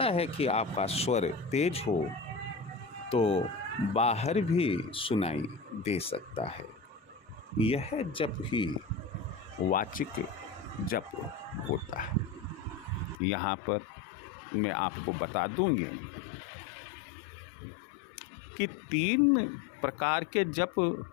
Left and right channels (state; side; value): drops out; right; at 13.2 s